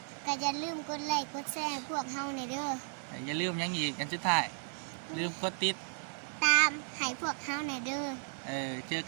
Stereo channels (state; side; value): silent; left; 55 dB below the other